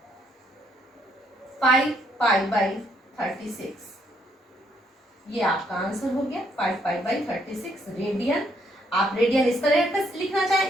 पाई बाई 36, ये आपका आंसर हो गया 5 पाई बाई 36 रेडियन। आप रेडियन इस तरह का लिखना चाहें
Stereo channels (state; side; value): normal; both; correlation 0.71